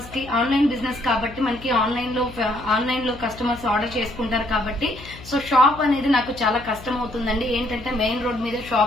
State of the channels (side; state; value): left; noise; hum, 17 dB below the sound